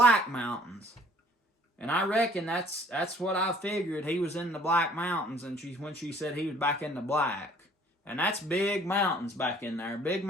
Mountains. And I reckon that's what I figured. He was in the Black Mountains, and when she said he was back in the black. And that's big mountains back in there. Big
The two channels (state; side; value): normal; both; correlation 0.56